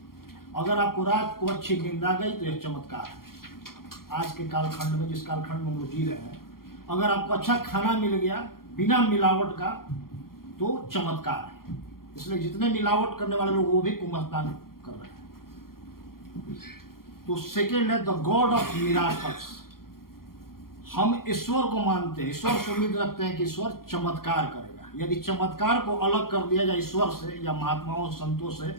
अगर आपको रात को अच्छी नींद आ गई तो यह चमत्कार है। आज के कालखंड में, जिस कालखंड में हम लोग जी रहे हैं, अगर आपको अच्छा खाना मिल गया बिना मिलावट का तो चमत्कार है। इसलिए जितने मिलावट करने वाले लोग वो भी कुंभ स्नान कर रहे हैं। तो सेकेंड है, द गॉड ऑफ मिराकल्स। हम ईश्वर को मानते हैं, ईश्वर से उम्मीद रखते हैं कि ईश्वर चमत्कार करेगा। यदि चमत्कार को अलग कर दिया जाए ईश्वर से या महात्माओं संतों से,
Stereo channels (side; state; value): right; late; 0.93 ms